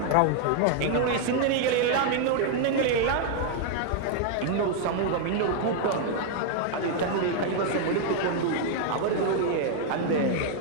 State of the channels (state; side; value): different; both; correlation 0.00